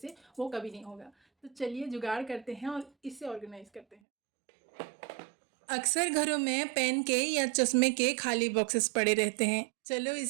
वो कभी नहीं होगा। तो चलिए जुगाड़ करते हैं और इसे ऑर्गेनाइज करते हैं। अक्सर घरों में पेन के या चश्मे के खाली बॉक्सेस पड़े रहते हैं। चलो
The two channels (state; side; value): drops out; left; at 4.0 s